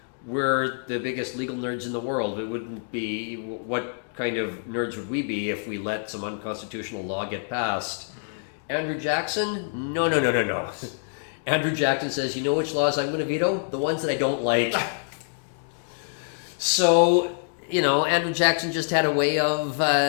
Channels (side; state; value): right; silent; digital silence